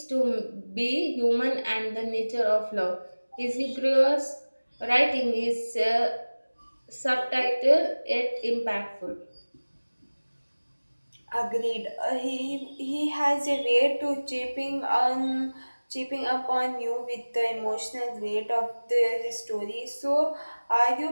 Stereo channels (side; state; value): both; inverted; correlation -1.00